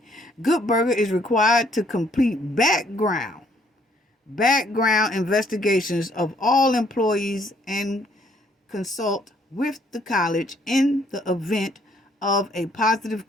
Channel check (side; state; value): both; normal; correlation 0.66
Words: Good Burger is required to complete background investigations of all employees and consult with the college in the event of a positive